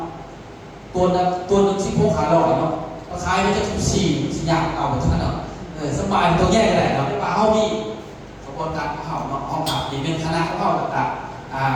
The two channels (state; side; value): identical; both; correlation 1.00